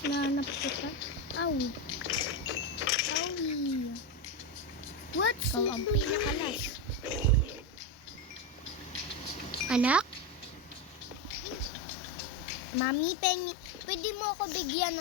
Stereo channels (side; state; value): both; normal; correlation 0.12